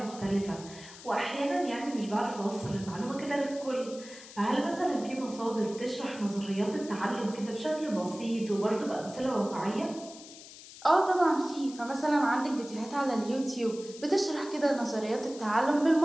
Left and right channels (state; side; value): noise; left; hiss, 17 dB below the sound